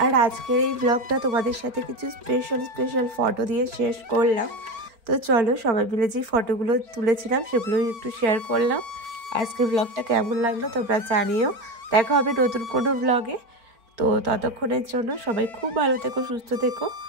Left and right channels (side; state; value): left; late; 4.4 ms